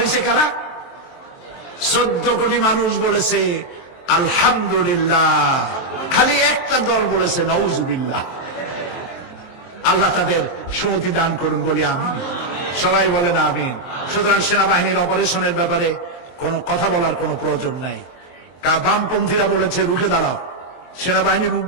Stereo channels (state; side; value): late; right; 23 ms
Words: কারা? 14 কোটি মানুষ বলেছে আলহামদুলিল্লাহ, খালি একটা দল বলেছে নাউজুবিল্লাহ। আল্লাহ তাদের সুমতি দান করুন বলি আমিন। সবাই বলেন আমিন। সুতরাং সেনাবাহিনীর অপারেশনের ব্যাপারে কোনো কথা বলার কোনো প্রয়োজন নাই। বামপন্থীরা বলেছে রুখে দাঁড়াও, সেনাবাহিনী